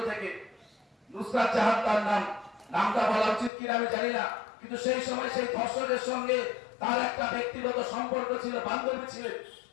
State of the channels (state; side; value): drops out; right; at 3.5 s